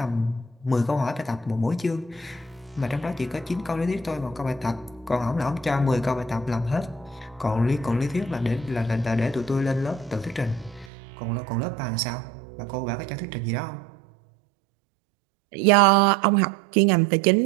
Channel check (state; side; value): drops out; left; at 10.9 s